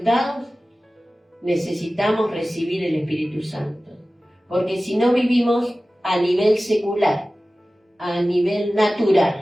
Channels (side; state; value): both; normal; correlation 0.96